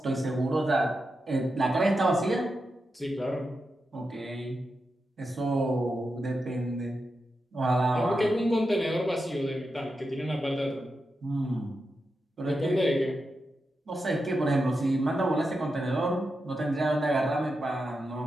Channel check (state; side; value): normal; both; correlation 0.88